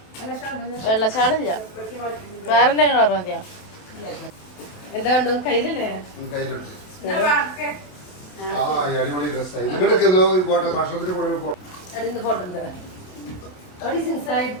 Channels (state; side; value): late; right; 27 ms